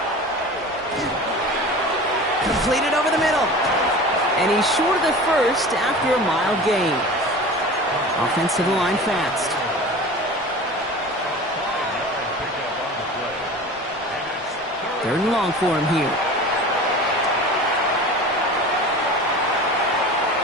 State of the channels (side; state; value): both; normal; correlation 0.36